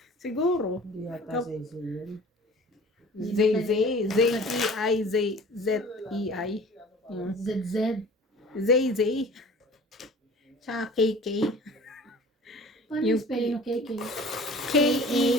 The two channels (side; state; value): both; normal; correlation 0.44